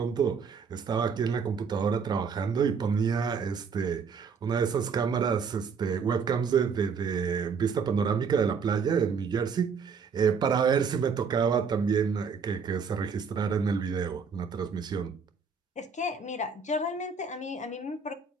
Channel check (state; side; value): quieter; left; 5.7 dB